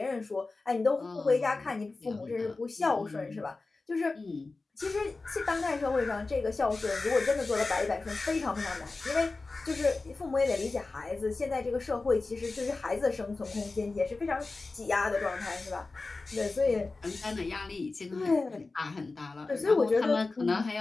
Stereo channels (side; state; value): right; quieter; 3.6 dB